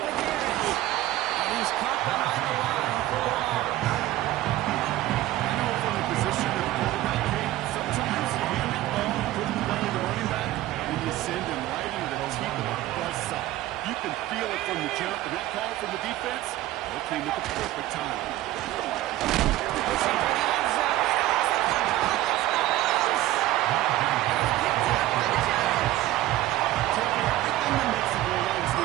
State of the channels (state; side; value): quieter; left; 15.4 dB